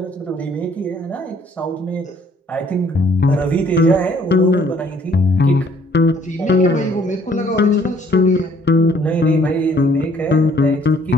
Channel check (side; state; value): both; normal; correlation 0.61